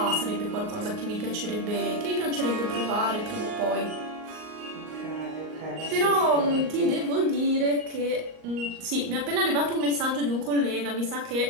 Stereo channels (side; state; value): left; late; 38 ms